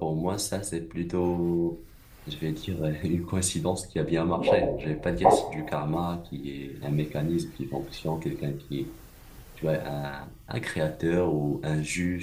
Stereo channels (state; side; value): identical; both; correlation 1.00